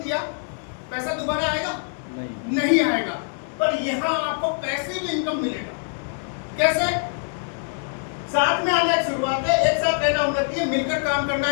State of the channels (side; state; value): right; silent; 63 dB below the other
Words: दिया, पैसा दोबारा आएगा? नहीं आएगा। पर यहाँ आपको पैसे भी इनकम मिलेगा। कैसे? साथ में आना एक शुरुआत है, एक साथ रहना उन्नति है, मिलकर काम करना